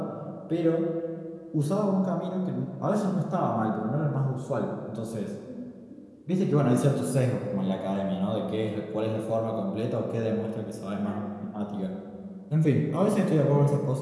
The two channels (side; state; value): both; identical; correlation 1.00